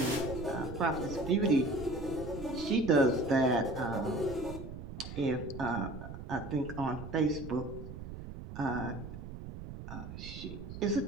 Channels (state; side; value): noise; right; rumble, 10 dB below the sound